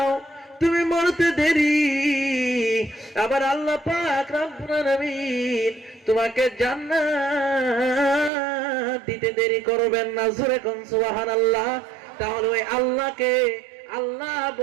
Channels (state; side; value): drops out; left; at 8.3 s